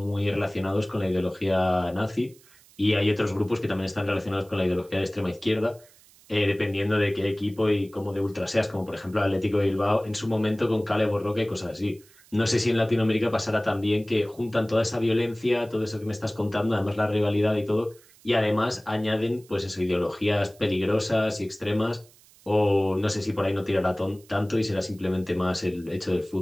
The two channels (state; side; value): noise; right; hiss, 27 dB below the sound